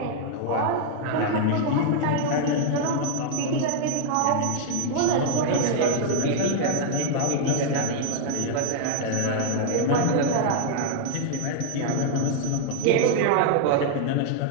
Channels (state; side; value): different; both; correlation 0.00